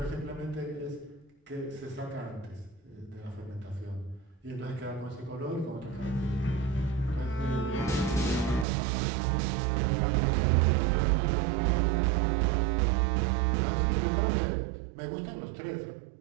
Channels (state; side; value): drops out; left; at 8.7 s